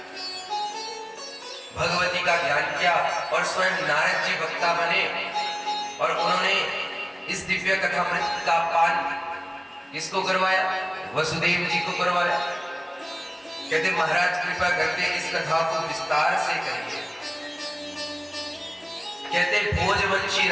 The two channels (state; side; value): identical; both; correlation 1.00